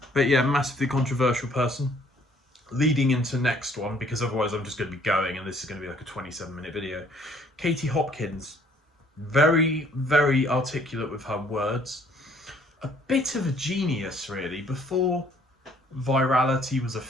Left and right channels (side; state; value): both; normal; correlation 0.61